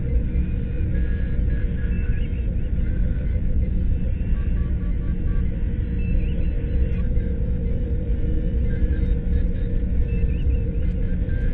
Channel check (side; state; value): both; identical; correlation 1.00